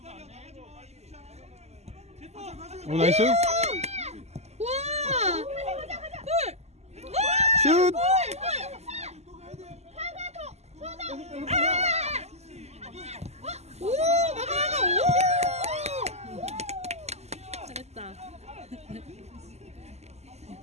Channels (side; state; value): left; late; 0.32 ms